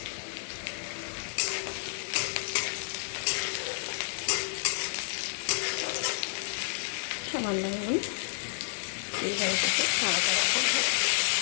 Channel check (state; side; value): silent; right; digital silence